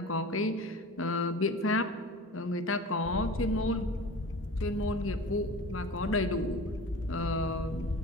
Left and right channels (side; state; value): both; normal; correlation 0.36